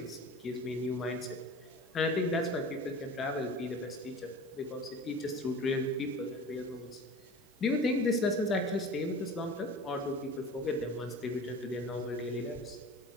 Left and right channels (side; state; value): both; normal; correlation 0.39